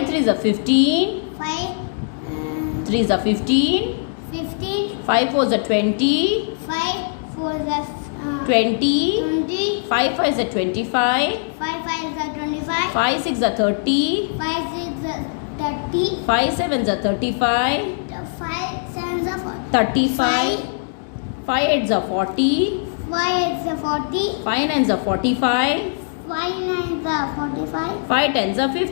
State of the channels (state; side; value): silent; right; digital silence